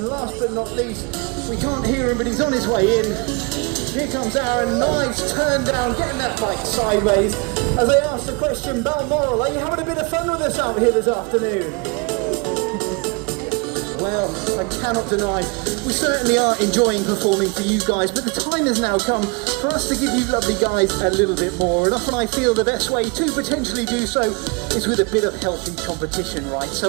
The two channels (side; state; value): left; quieter; 30.0 dB